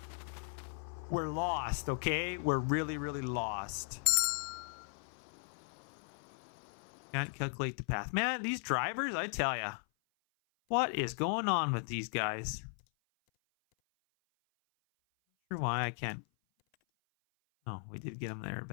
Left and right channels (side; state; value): right; silent; 53 dB below the other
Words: We're lost, okay? We're really, really lost. Can't calculate the path. Man, these drivers, I tell ya. What is going on with these guys? Not sure why I can't. Oh, we did get them there